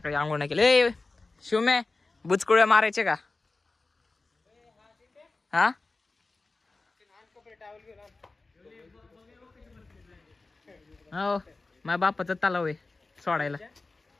आंघोळ नाही केले. शिवमे बुचकुळ्या मारायचे का? हा हो, माझ्या बापाचा तलाव आहे सोडायला.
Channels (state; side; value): quieter; right; 3.5 dB